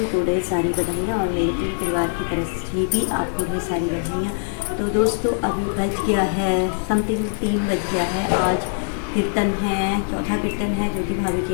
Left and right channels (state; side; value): silent; right; digital silence